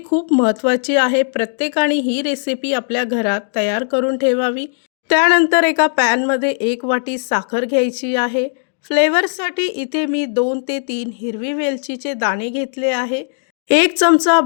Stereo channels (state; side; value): silent; right; digital silence